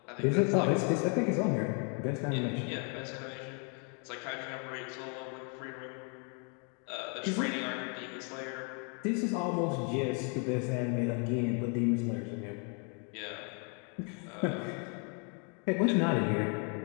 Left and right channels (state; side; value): quieter; right; 38.4 dB